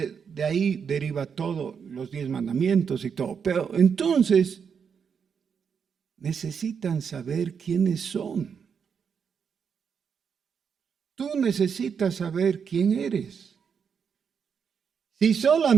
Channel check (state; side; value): quieter; left; 6.7 dB